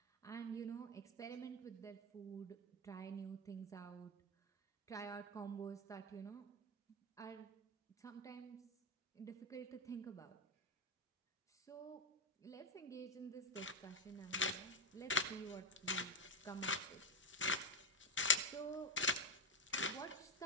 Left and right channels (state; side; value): normal; both; correlation 0.11